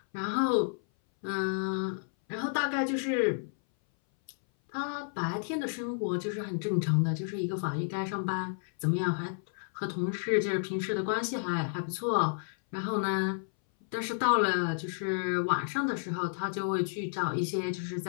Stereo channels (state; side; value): silent; right; 57 dB below the other